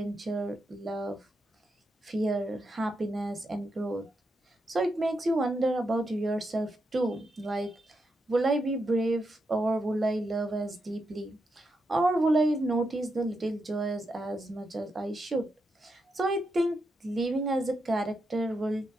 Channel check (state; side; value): normal; both; correlation 0.84